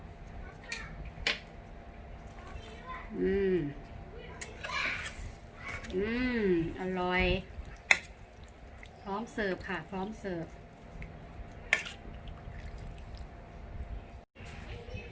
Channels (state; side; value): identical; both; correlation 1.00